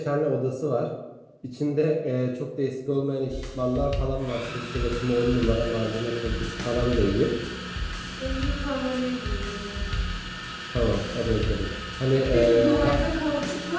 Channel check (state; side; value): identical; both; correlation 1.00